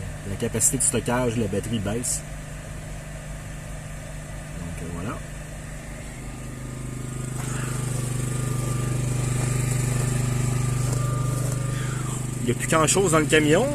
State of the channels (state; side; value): identical; both; correlation 1.00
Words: capacité de stockage de la batterie baisse. Donc voilà. Il n'y a plus grand chose dans le camion.